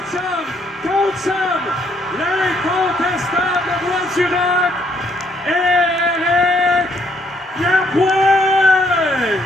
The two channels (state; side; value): normal; both; correlation 0.69